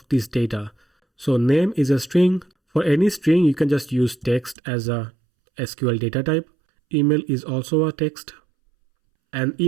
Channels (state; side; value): drops out; left; at 4.5 s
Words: these data. So name is a string. For any string, you can just use text as a SQL data type. Email is also a text. And